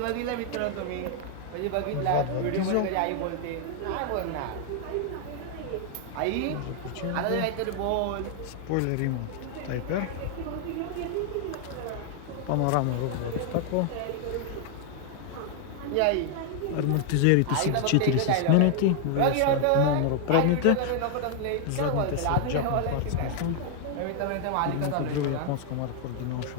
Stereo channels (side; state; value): both; different; correlation 0.00